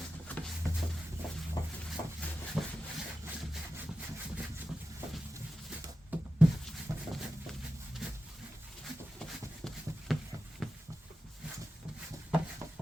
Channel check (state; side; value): normal; both; correlation 0.92